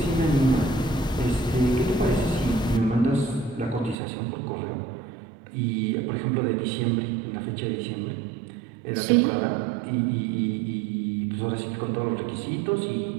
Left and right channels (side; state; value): left; drops out; at 4.0 s